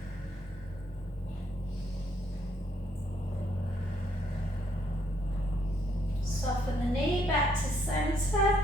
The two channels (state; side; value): normal; both; correlation 0.71